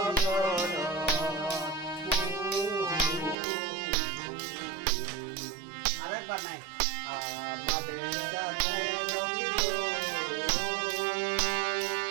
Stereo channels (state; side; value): drops out; left; at 3.4 s